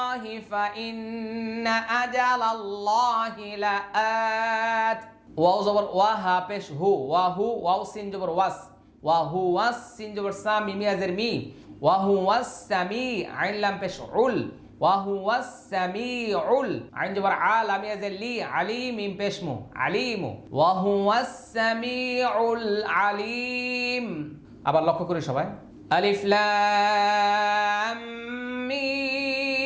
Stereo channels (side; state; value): both; identical; correlation 1.00